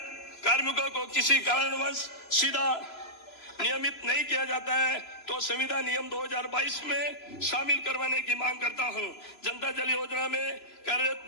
कार्मिकों को किसी कारणवश सीधा नियमित नहीं किया जाता है तो संविदा नियम 2022 में शामिल करवाने की मांग करता हूं। जनता जल योजना में कार्यरत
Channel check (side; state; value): right; late; 3.0 ms